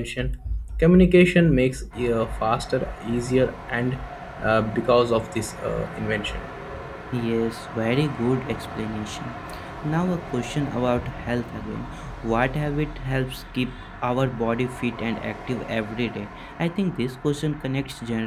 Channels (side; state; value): both; identical; correlation 1.00